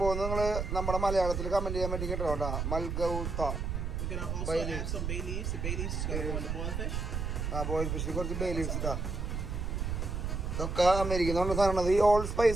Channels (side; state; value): right; noise; rumble, 2 dB below the sound